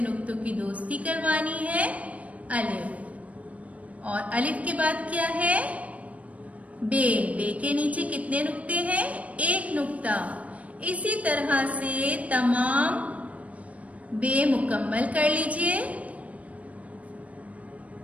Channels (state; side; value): late; left; 0.067 ms